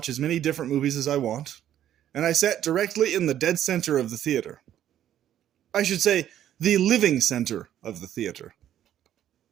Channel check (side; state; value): left; quieter; 11.2 dB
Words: as many different movies as I want, and I sat directly in the dead center of the theater. I should say, the living center of the theater.